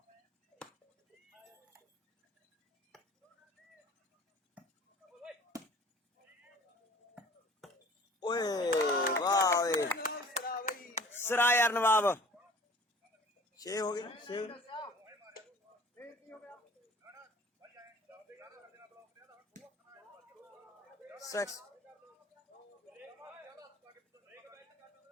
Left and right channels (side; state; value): both; normal; correlation 0.46